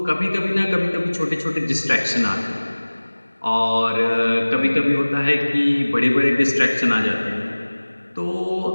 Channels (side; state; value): both; inverted; correlation -1.00